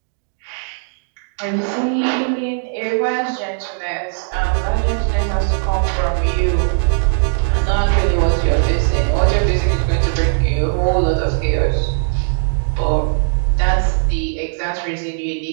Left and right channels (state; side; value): silent; left; digital silence